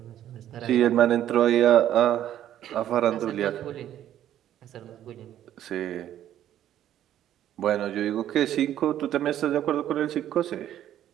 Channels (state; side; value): quieter; left; 11.6 dB